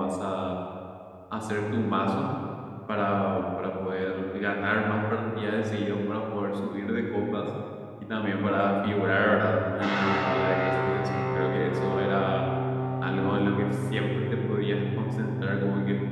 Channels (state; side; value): identical; both; correlation 1.00